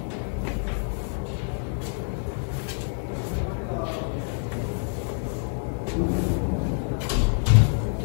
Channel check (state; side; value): silent; right; 60 dB below the other